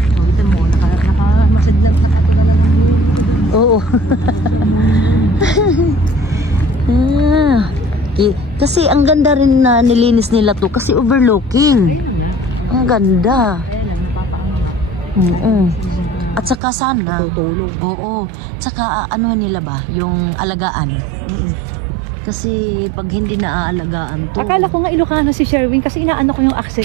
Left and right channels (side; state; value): left; drops out; at 16.6 s